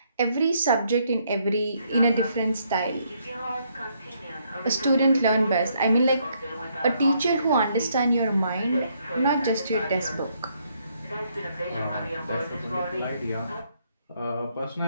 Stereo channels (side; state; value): both; inverted; correlation -0.72